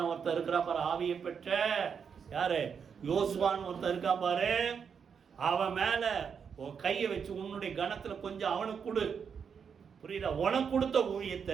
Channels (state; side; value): quieter; left; 6.7 dB